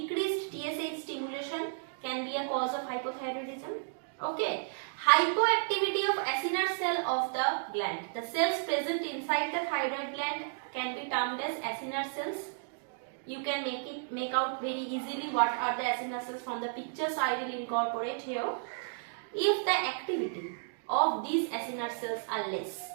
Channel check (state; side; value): silent; left; digital silence